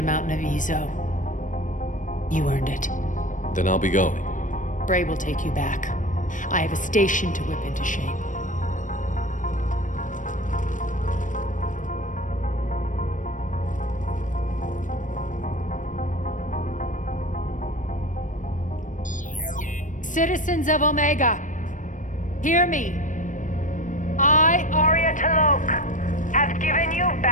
mountain of Ezo. You earned it. Then I'll be going. Bray will take you back. I have a station to whip into shape. Citizens of Omega, hear me. I, Arya T'Loak, have given you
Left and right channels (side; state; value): right; late; 0.37 ms